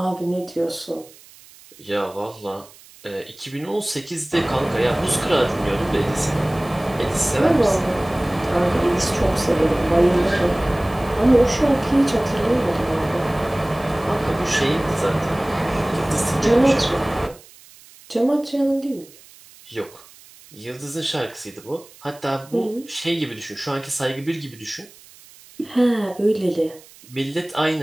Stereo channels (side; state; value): right; noise; hiss, 23 dB below the sound